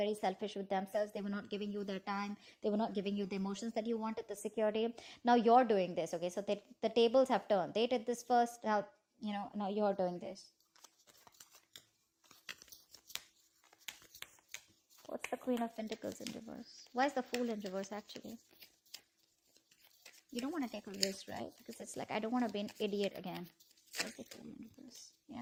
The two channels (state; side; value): identical; both; correlation 1.00